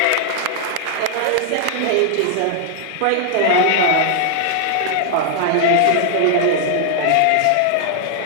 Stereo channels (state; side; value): different; both; correlation 0.00